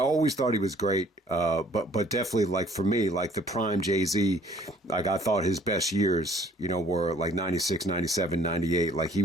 thought he was great, but definitely, like, for me, like, the prime Jay-Z, like, I thought his best years, were, like, 96, 97, 98. Like, he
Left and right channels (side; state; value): both; normal; correlation 0.58